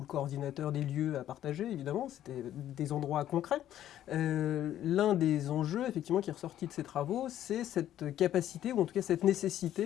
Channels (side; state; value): right; quieter; 11.9 dB